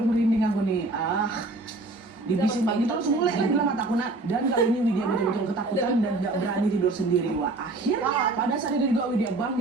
merinding aku nih. Dibisin kayak gitu langsung mulai lagi lah mataku nak. Dan kali ini Widya betul-betul ketakutan dan gak berani tidur sendiri. Wah, akhirnya pada saat itu juga Widya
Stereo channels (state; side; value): quieter; left; 3.1 dB